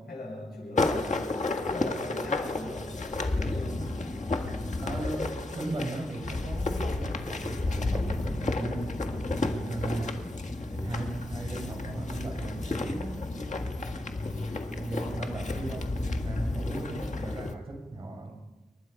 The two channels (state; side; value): normal; both; correlation 0.82